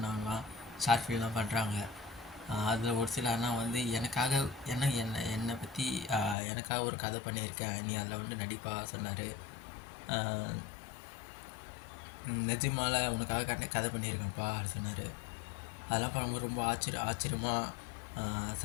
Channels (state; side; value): drops out; right; at 6.4 s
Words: ஷார்ட் ஃபிலிம்லாம் பண்ணுறாங்க. அதில் ஒரு சில அண்ணா வந்து எனக்காக என்னை பற்றி எனக்காக ஒரு கதை பண்ணியிருக்கேன், நீ அதில் வந்து நடிப்பா சொன்னார். நிஜமால உனக்காக கதை பண்ணியிருக்கேன்ப்பா அப்படின்னு சொன்னார். அதெல்லாம் பண்ணும்போது ரொம்ப ஆச்சரியமாக